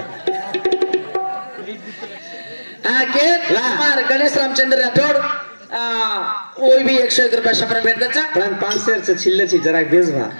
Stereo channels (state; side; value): inverted; both; correlation -1.00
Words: हाँ के मार गणेश रामचंद्र राठौड़ वो भी 101 रुपया शपर भेट दचा पण 500 से छिल्ले छी जरा बेस भा